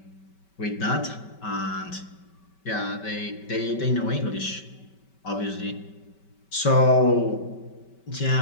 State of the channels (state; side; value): late; right; 5.2 ms